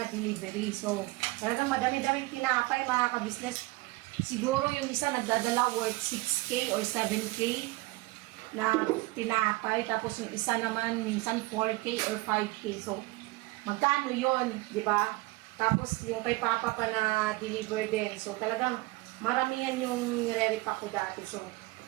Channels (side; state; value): left; quieter; 21.7 dB